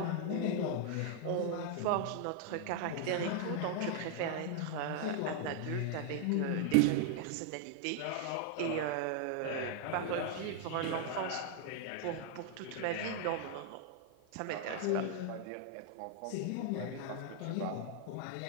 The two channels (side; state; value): both; different; correlation 0.00